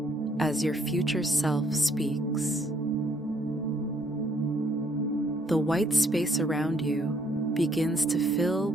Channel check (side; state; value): both; normal; correlation 0.67